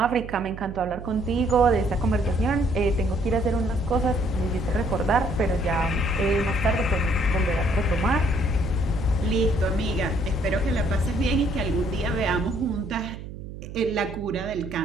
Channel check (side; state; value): right; noise; hum, 11 dB below the sound